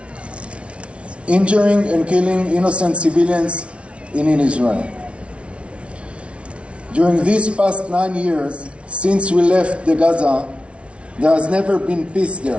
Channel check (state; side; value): late; left; 0.060 ms